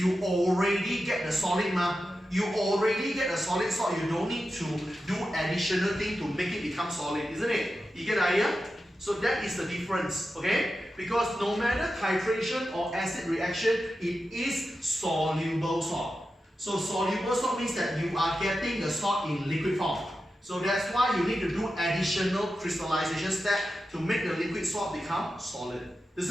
already get the solid You already get a solid salt. You don't need to do additional thing to make it become solid, isn't it? You get the idea? So that is the difference, okay? Because no matter titration or acid reaction, it is soluble salt. So soluble salt means that you are getting the salt in liquid form. So that's why you need to do additional crystallization step to make the liquid salt become solid.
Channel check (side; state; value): both; normal; correlation 0.91